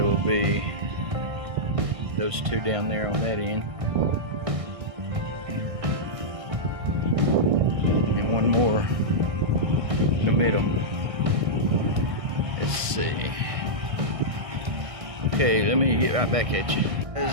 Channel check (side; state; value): left; late; 1.6 ms